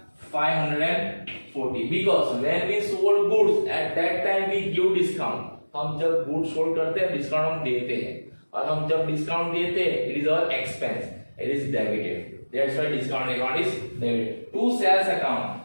540, because when we sold goods at that time we give discount. हम जब गुड्स सोल्ड करते हैं डिस्काउंट हम देते हैं, और हम जब डिस्काउंट देते हैं it is our expense, it is debited, that's why discount account is debited. To sales account,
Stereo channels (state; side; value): inverted; both; correlation -1.00